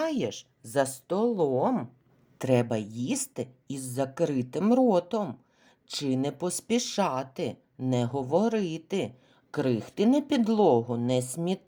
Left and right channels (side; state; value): both; identical; correlation 1.00